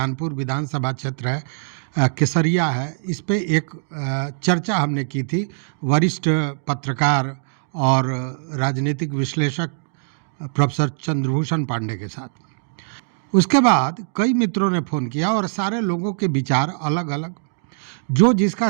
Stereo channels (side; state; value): left; silent; digital silence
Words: विधानसभा क्षेत्र है, केसरिया है, इस पे एक चर्चा हमने की थी वरिष्ठ पत्रकार और राजनीतिक विश्लेषक प्रोफेसर चंद्रभूषण पांडे के साथ। उसके बाद कई मित्रों ने फ़ोन किया और सारे लोगों के विचार अलग अलग, जो जिसका